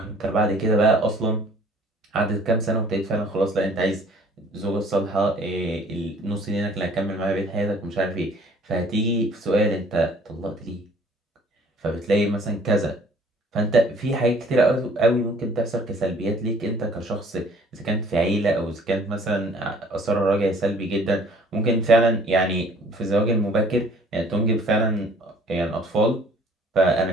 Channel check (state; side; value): normal; both; correlation 0.55